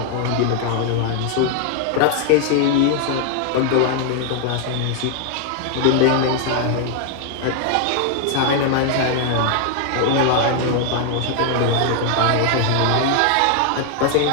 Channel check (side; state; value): both; different; correlation 0.00